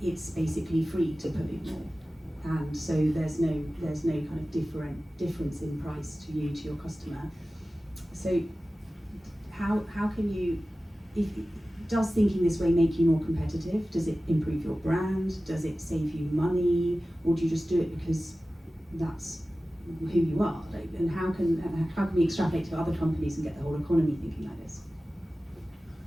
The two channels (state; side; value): normal; both; correlation 0.96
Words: it's basically free to pollute more, and so there's no kind of difference in price to you, to your customer. So how can you, does thinking this way make you more competitive? Does it improve your brand? Does it save you money? Or do you just do it because that's who you are? Like, and how can we extrapolate to other companies and get the whole economy thinking like this?